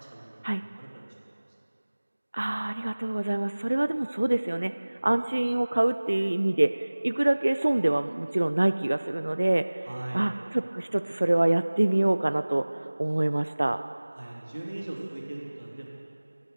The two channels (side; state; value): both; inverted; correlation -1.00